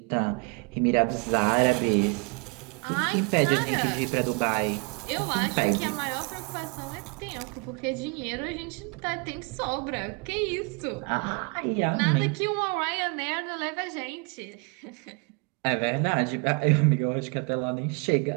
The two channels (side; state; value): left; quieter; 32.8 dB